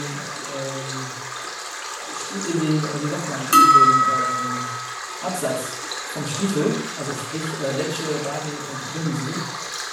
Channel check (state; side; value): identical; both; correlation 1.00